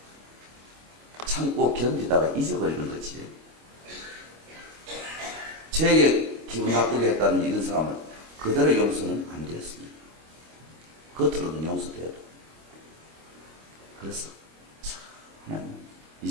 참고 견디다가 잊어버리는 거지. 저에게 기분 나쁘게 했다는 이런 사람을 그대로 용서는 안 되었습니다. 겉으로는 용서돼도. 그래서 하나님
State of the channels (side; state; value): left; late; 25 ms